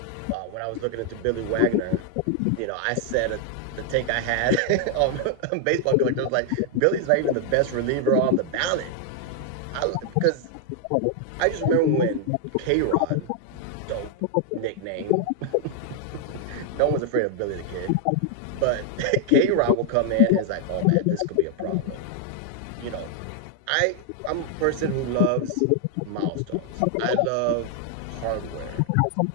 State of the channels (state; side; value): different; both; correlation 0.00